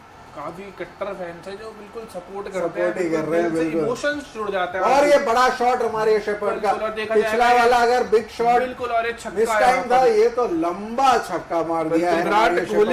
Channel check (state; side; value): identical; both; correlation 1.00